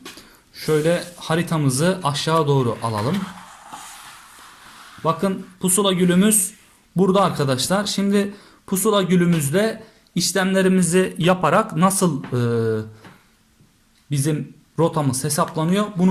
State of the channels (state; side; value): identical; both; correlation 1.00